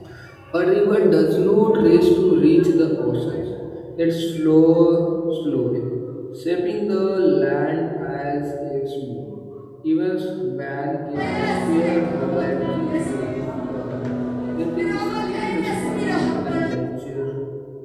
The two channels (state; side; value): identical; both; correlation 1.00